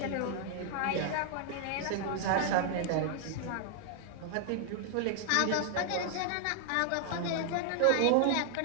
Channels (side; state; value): both; different; correlation 0.00